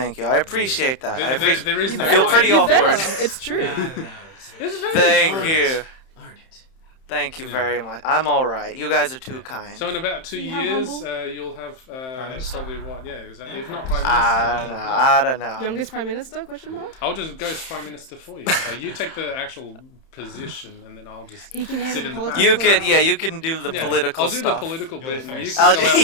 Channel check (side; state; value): right; late; 31 ms